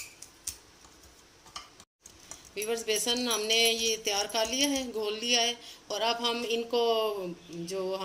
व्यूवर्स, बेसन हमने ये तैयार कर लिया है, घोल लिया है। और अब हम इनको, जो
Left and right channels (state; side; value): identical; both; correlation 1.00